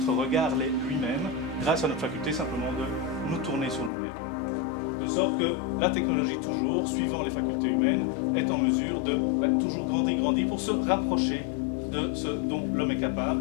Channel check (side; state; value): right; drops out; at 3.9 s